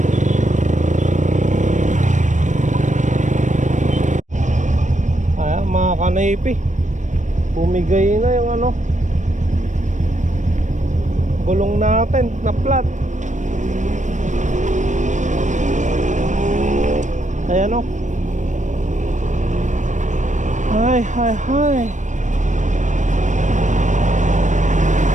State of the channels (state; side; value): late; left; 0.35 ms